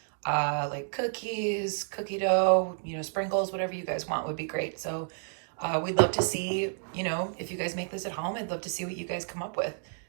Like cookies, cookie dough, sprinkles, whatever you guys want would be great. So we'd love to see, if you guys make this at home, I'd love to see what you guys come up with.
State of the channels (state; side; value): silent; left; digital silence